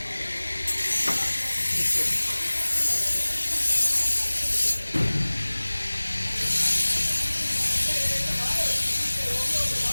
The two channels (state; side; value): inverted; both; correlation -1.00